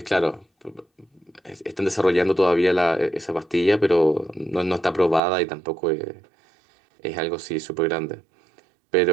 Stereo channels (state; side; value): drops out; left; at 5.2 s